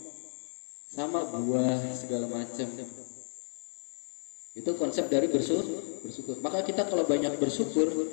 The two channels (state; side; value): silent; right; digital silence